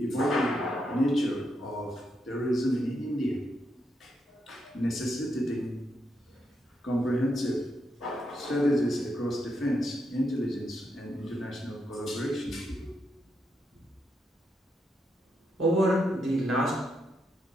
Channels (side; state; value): both; normal; correlation 0.81